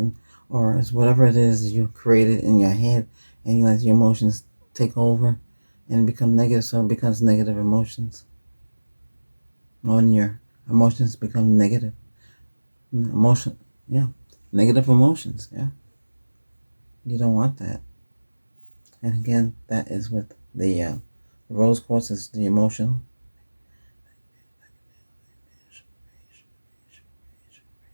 or it's whatever it is you created in your head, and you let your emotions take over and become negative, so it becomes negative emotions. When your emotions become negative, emotion, yeah, negative emotions, yeah, you don't want that. And again, that is with the rose quartz is the emotional.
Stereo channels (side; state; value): both; inverted; correlation -1.00